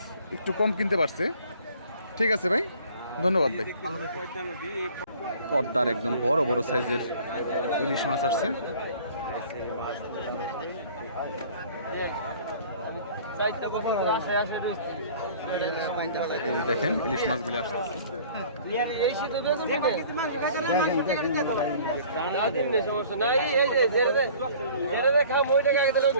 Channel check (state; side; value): inverted; both; correlation -0.50